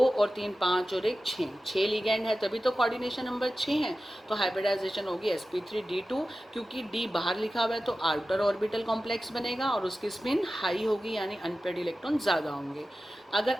और 3 5 और एक 6, 6 लिगेंड है तभी तो कोऑर्डिनेशन नंबर 6 है, तो हाइब्रिडाइजेशन होगी sp3d2, क्योंकि d बाहर लिखा हुआ है तो आउटर ऑर्बिटल कॉम्प्लेक्स बनेगा और उसकी स्पिन हाई होगी, यानी अनपेयर्ड इलेक्ट्रॉन ज़्यादा होंगे। अगर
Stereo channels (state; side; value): normal; both; correlation 0.94